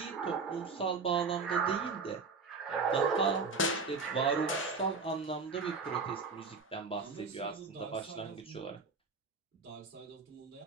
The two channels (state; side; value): quieter; left; 4.5 dB